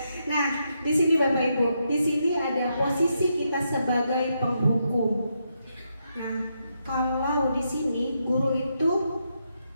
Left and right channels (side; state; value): both; inverted; correlation -0.81